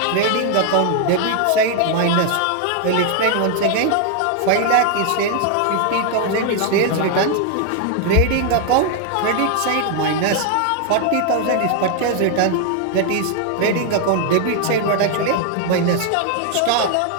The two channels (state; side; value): different; both; correlation 0.00